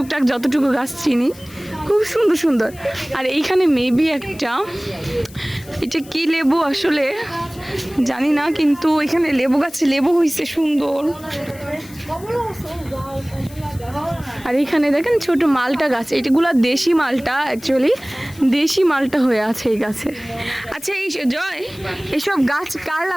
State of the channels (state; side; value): noise; left; hiss, 21 dB below the sound